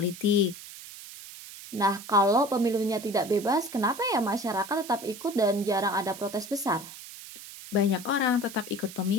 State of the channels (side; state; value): right; noise; hiss, 14 dB below the sound